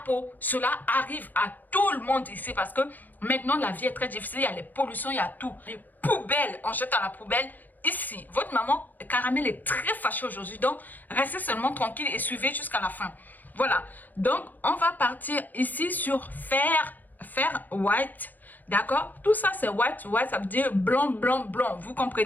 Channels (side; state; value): right; late; 0.084 ms